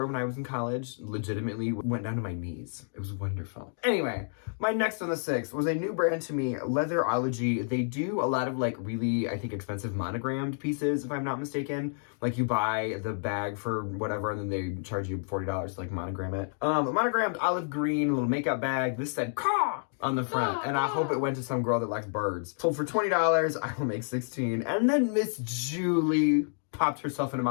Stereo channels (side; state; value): right; silent; digital silence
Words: when I was in college legitimately went down to my knees. It was wonderful. Anyway, my next on the 6th was a new brand to me, Leatherology. They do a lot of like really, I think, expensive monogrammed pieces, if I'm not mistaken. Like you buy the bag for whatever, and then they charge you $40 to like monogram it. A monogrammed olive green little makeup bag. This said "Caw" on the front, and I hope it went to some girl that likes birds. Sold for $20. I will make $16. And then Miss Julie popped herself into